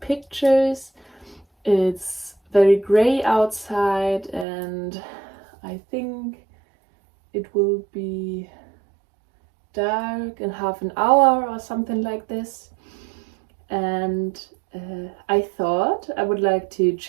It's very gray outside and I think it will be dark in half an hour or something like this. And I thought I would like to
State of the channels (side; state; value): left; drops out; at 4.5 s